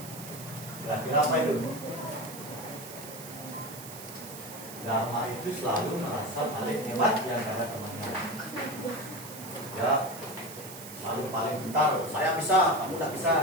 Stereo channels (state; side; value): noise; right; hiss, 13 dB below the sound